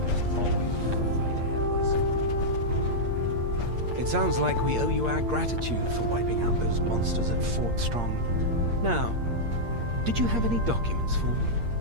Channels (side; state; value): left; late; 8.6 ms